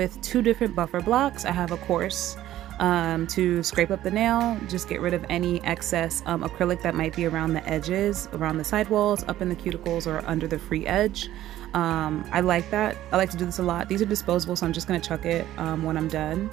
two different buffer blocks. I have a coarse to scrape up the nail, just get rid of any excess acrylic that might be around the edges, around the sidewalls, up in the cuticles, or under the free edge. I like that. I like to do this a lot. These are disposable, so I'm just gonna chuck it when I'm done.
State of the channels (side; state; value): left; quieter; 13.5 dB